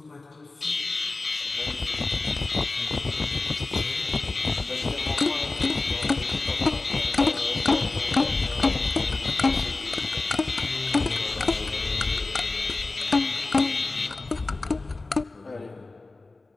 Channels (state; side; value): quieter; right; 3.4 dB